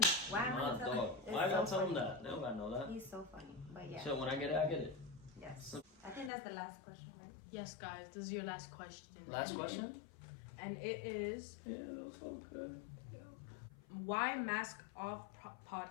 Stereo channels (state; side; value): drops out; right; at 6.3 s